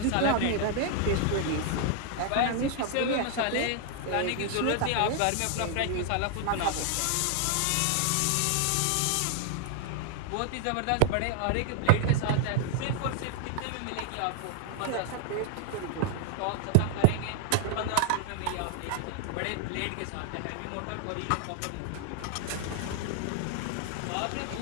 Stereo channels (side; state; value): both; different; correlation 0.00